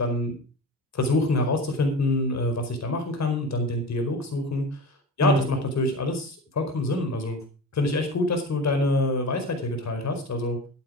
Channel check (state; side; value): normal; both; correlation 0.30